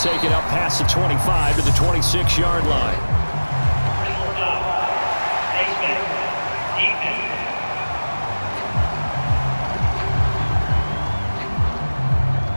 it up past the 25 to the 26-yard line.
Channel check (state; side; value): inverted; both; correlation -1.00